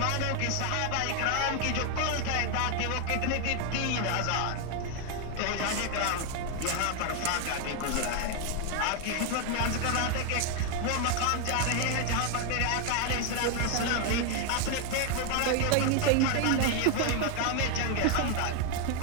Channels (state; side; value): different; both; correlation 0.00